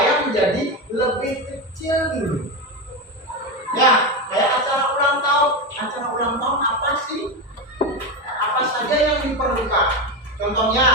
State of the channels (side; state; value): both; normal; correlation 0.15